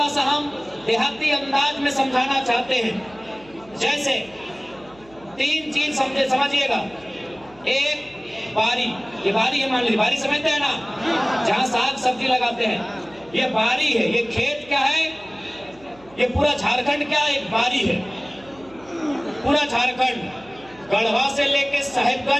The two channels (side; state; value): right; noise; hum, 25 dB below the sound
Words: सा हम देहाती अंदाज में समझाना चाहते हैं। जैसे तीन चीज समझिएगा एक बारी, ये बारी है, मान लीजिए बारी समझते हैं ना, जहाँ साग सब्जी लगाते हैं, ये बारी है। ये खेत क्या है, ये पूरा झारखंड क्या है, एक बारी है। पूरा झारखंड गढ़वा से लेके